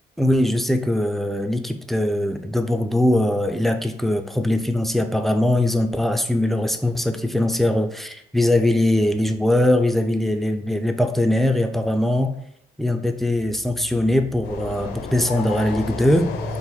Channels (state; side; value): normal; both; correlation 0.89